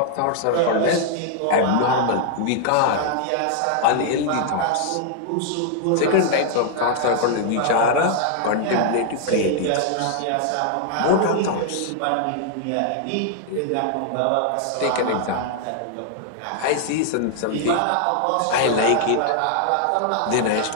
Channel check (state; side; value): different; both; correlation 0.00